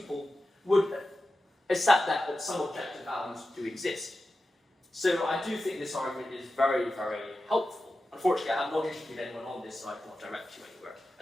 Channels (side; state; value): both; normal; correlation 0.92